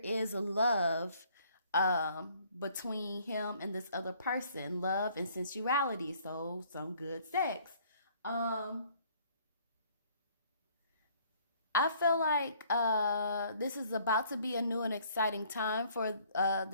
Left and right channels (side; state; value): both; inverted; correlation -0.60